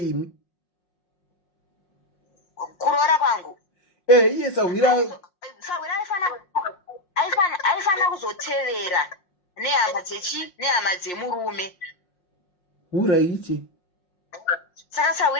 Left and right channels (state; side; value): late; right; 5.6 ms